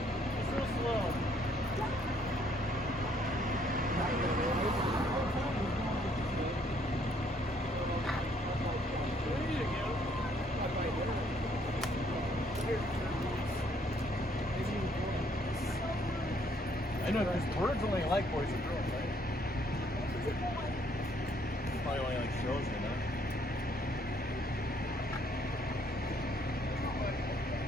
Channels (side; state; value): both; normal; correlation 0.66